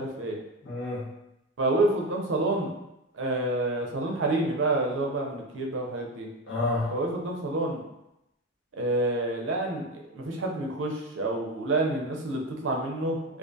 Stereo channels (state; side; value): normal; both; correlation 0.19